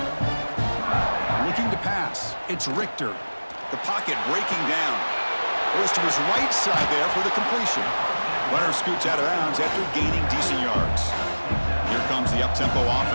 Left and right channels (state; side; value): inverted; both; correlation -1.00